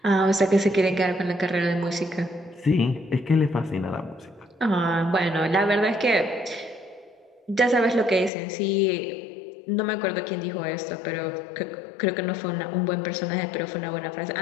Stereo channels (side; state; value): right; drops out; at 8.3 s